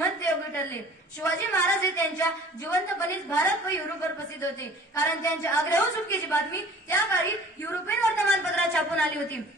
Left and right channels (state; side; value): normal; both; correlation 0.47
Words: योगी ठरले। शिवाजी महाराज हे त्यांच्या जिवंतपणीच भारत व युरोपवर प्रसिद्ध होते, कारण त्यांच्या आग्रह सुटकेची बातमी त्या काळी युरोपियन वर्तमानपत्रात छापून आली होती।